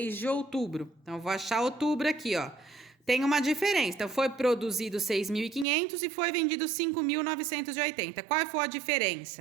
de outubro? Então, eu vou achar outubro aqui, ó. Tem uma diferença. Então, foi produzido 6.500 e foi vendido 5.980. Qual foi a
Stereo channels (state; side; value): drops out; left; at 5.7 s